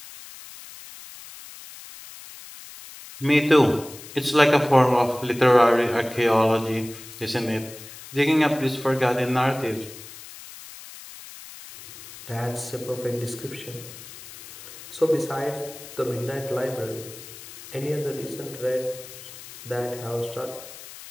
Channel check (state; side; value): noise; left; hiss, 16 dB below the sound